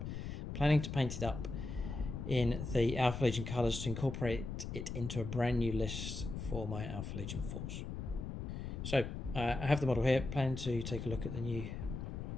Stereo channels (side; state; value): left; noise; rumble, 6 dB below the sound